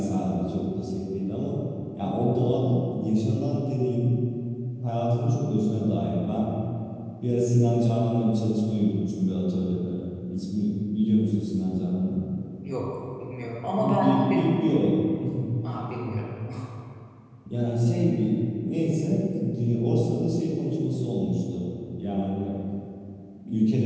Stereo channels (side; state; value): both; identical; correlation 1.00